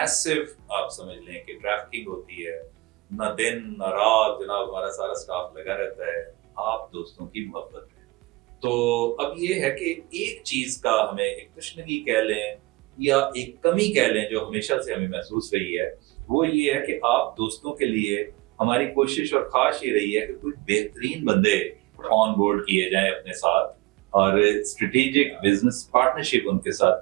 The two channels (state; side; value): quieter; left; 22.5 dB